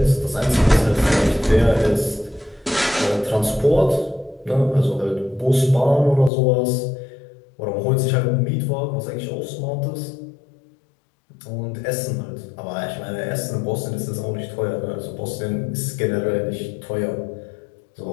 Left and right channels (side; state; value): right; drops out; at 6.3 s